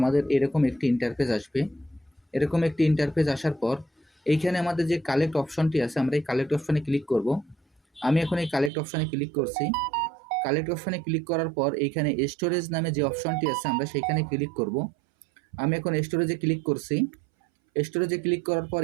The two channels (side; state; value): left; drops out; at 8.7 s